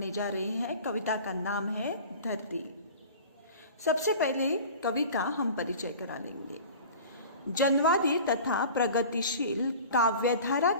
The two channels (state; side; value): inverted; both; correlation -0.40